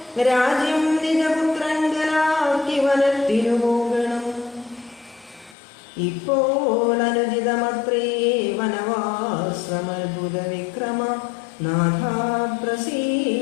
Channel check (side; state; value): right; drops out; at 5.6 s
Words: രാജ്യം നിജപുത്രങ്കലാക്കി വനത്തിനു പോകണം. ഇപ്പോൾ അനുചിതമത്രേ വനവാസമത്ഭുത വിക്രമ നാഥാ